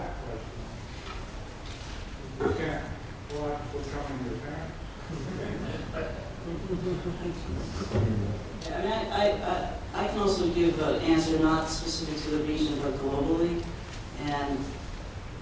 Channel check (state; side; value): identical; both; correlation 1.00